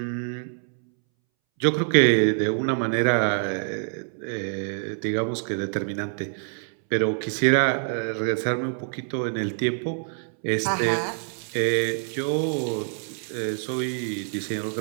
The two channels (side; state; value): left; silent; 61 dB below the other